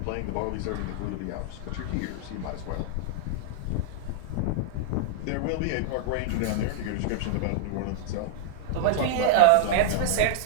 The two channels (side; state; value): both; different; correlation 0.00